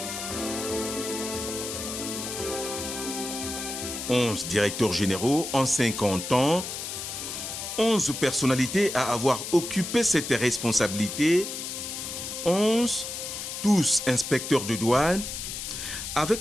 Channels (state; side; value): noise; left; hiss, 6 dB below the sound